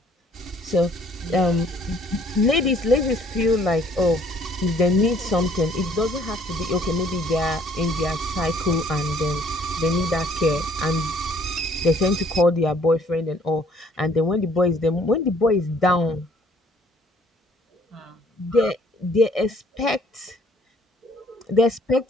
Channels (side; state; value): both; normal; correlation 0.60